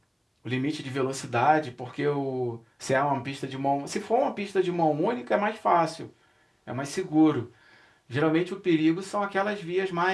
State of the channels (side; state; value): both; identical; correlation 1.00